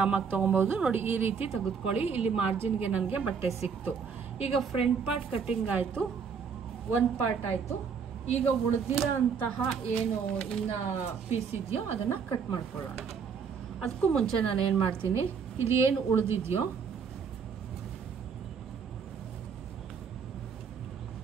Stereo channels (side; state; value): left; quieter; 6.2 dB